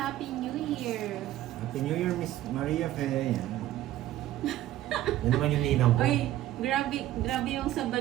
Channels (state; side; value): quieter; left; 13.8 dB